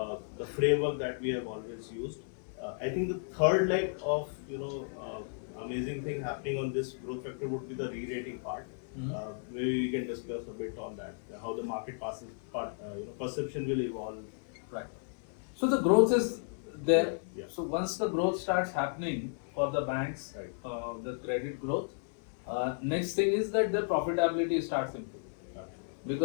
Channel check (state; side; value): silent; right; 55 dB below the other